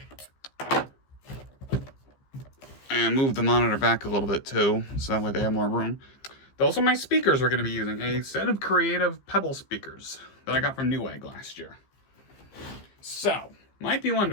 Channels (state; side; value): late; right; 15 ms